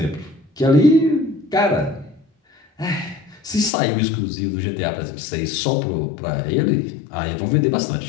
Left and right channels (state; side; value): drops out; right; at 3.7 s